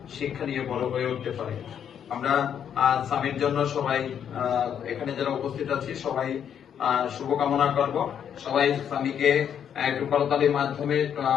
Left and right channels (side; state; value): right; quieter; 8.7 dB